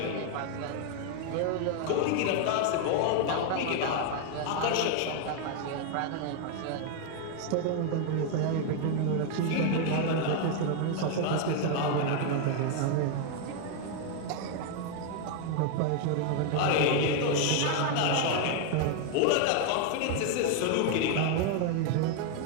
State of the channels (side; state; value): both; different; correlation 0.01